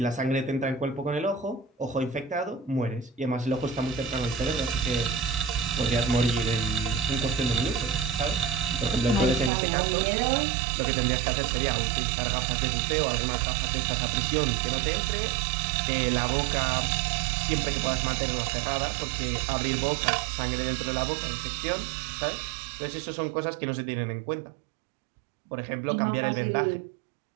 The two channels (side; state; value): left; drops out; at 9.5 s